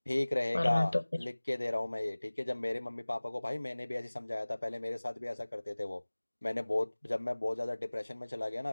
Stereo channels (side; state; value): both; inverted; correlation -1.00